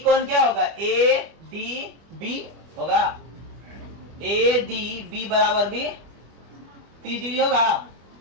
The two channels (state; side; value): late; left; 25 ms